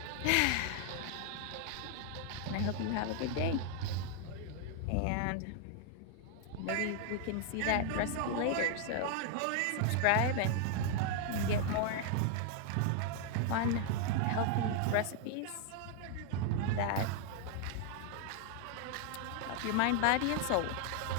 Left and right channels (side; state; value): both; different; correlation 0.00